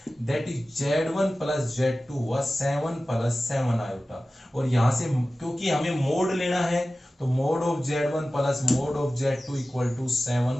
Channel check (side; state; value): both; normal; correlation 0.96